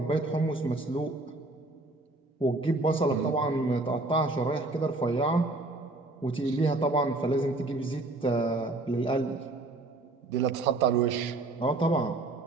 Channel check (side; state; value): left; quieter; 3.0 dB